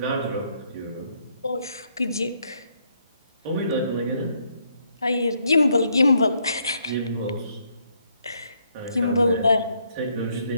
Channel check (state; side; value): inverted; both; correlation -0.72